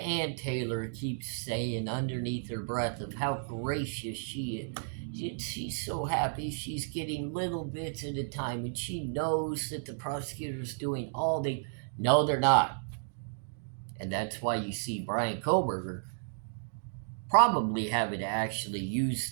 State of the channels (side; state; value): left; silent; digital silence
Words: Taylor keeps saying underneath her breath of how gracious she is. She's so happy she's getting little bits at a time, and she knows that the prosecutor's doing all they... No, they're not. And that's why you see Bryan Kohberger probably having to actually